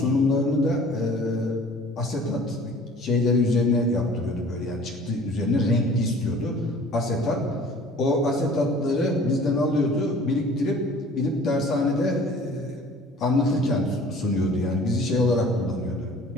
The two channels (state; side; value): normal; both; correlation 0.49